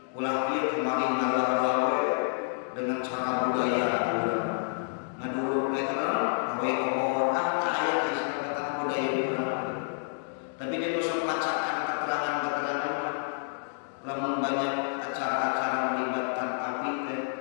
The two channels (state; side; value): silent; right; digital silence